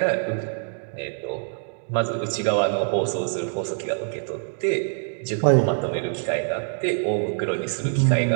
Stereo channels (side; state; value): left; silent; digital silence